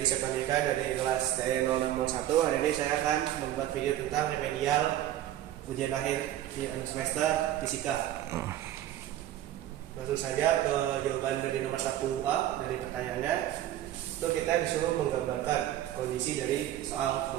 dari kelas TE0601. Hari ini saya akan membuat video tentang remedial ujian akhir di semester fisika. Langsung saja ke jawaban dari nomor 1A dari pertanyaannya. Itu kita disuruh menggambarkan kondisi dari soal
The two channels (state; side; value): quieter; left; 12.8 dB